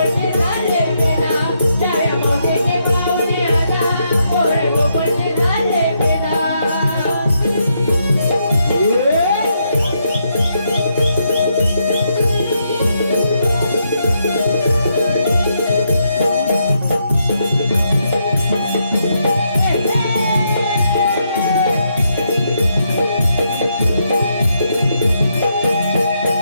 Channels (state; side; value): inverted; both; correlation -0.78